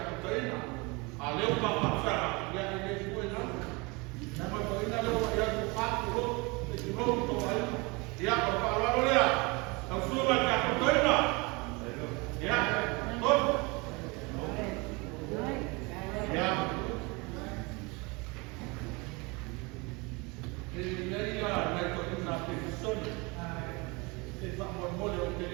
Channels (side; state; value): left; quieter; 27.1 dB